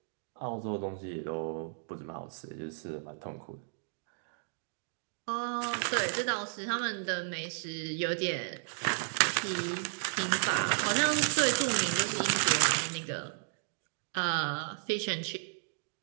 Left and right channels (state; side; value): silent; left; digital silence